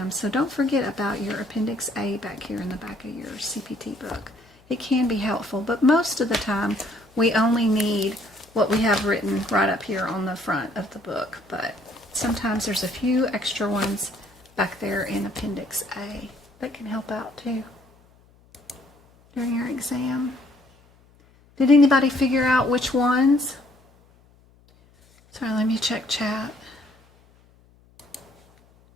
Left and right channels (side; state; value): left; noise; hum, 30 dB below the sound